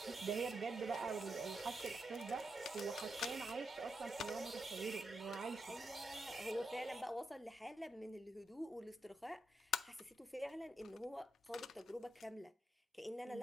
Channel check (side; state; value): both; normal; correlation 0.84